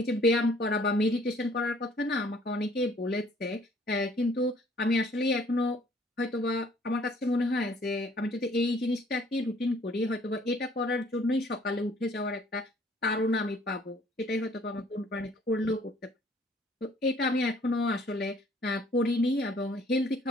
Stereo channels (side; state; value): both; normal; correlation 0.59